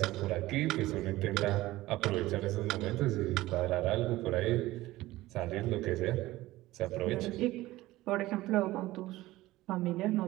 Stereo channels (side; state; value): left; quieter; 17.4 dB